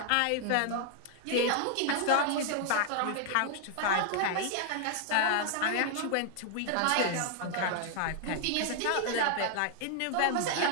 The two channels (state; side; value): different; both; correlation 0.00